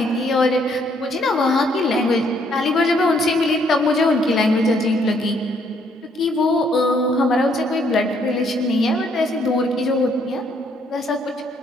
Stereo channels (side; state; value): both; normal; correlation 0.69